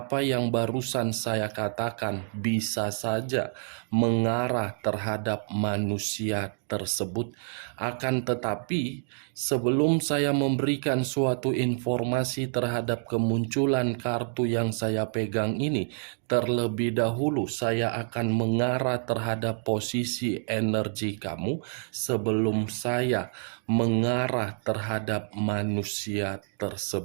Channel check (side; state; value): left; silent; 59 dB below the other